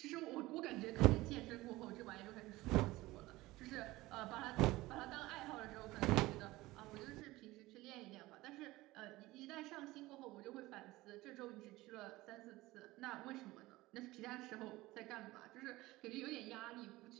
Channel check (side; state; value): left; quieter; 19.0 dB